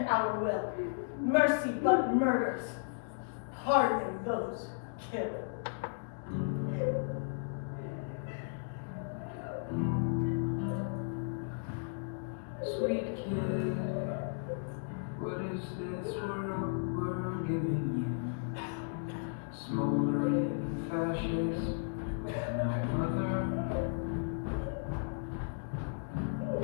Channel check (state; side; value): silent; right; digital silence